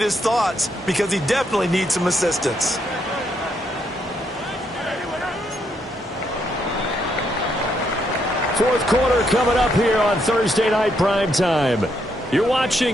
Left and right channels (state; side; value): normal; both; correlation 0.76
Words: his thoughts because he definitely needs some assistance. Fourth quarter coming up here on Thursday Night Primetime. You're